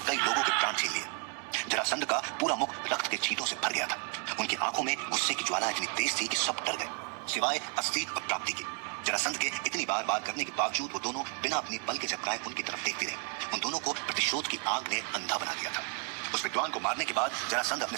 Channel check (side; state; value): left; quieter; 33.8 dB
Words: कई लोगों के प्राण छीन लिए। जरासंध का पूरा मुख रक्त के छींटों से भर गया था। उनकी आंखों में गुस्से की ज्वाला इतनी तेज थी कि सब डर गए, सिवाय अस्थि और प्राप्ति के। जरासंध के इतनी बार बार करने के बावजूद वो दोनों बिना अपनी बल के झपकाए उनकी तरफ देखते रहे। उन दोनों को प्रतिशोध की आग ने अंधा बना दिया था। उस विद्वान को मारने के बाद जरासंध अपने